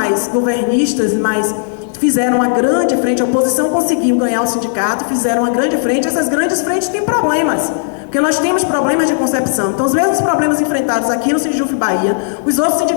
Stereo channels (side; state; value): right; silent; digital silence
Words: governistas, mas fizeram uma grande frente, a oposição conseguiu ganhar o sindicato, fizeram uma grande frente. Essas grandes frentes têm problemas, porque nós temos problemas de concepção. Então, os mesmos problemas enfrentados aqui no Sindjuf Bahia, os outros